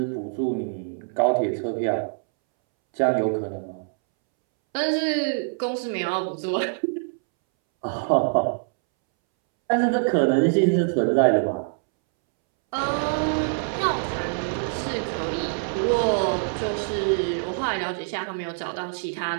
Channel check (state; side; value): silent; left; 62 dB below the other